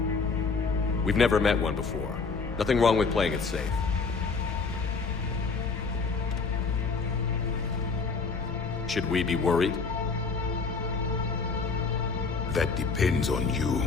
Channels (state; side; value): quieter; right; 4.6 dB